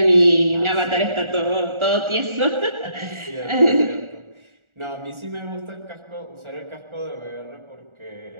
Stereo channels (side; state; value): left; late; 1.4 ms